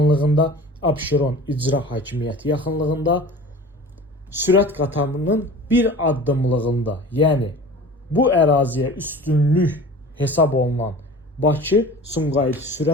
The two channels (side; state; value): both; normal; correlation 0.40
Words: Abşeron İcra Hakimiyyəti yaxınlığında, sürət qatarının bir addımlığında, yəni bu əraziyə üstünlük hesab olunan Bakı-Sumqayıt